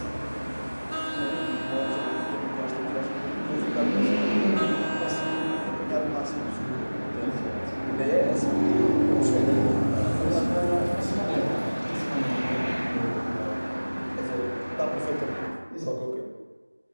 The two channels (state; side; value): inverted; both; correlation -1.00